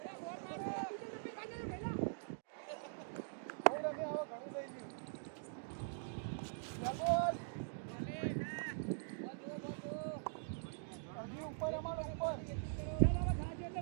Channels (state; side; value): silent; left; digital silence